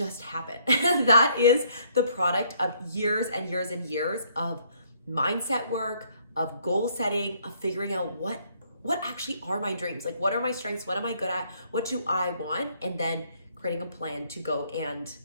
happen. That is the product of years and years and years of mindset work, of goal setting, of figuring out what actually are my dreams. What are my strengths? What am I good at? What do I want? And then creating a plan to go and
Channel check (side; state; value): both; inverted; correlation -0.66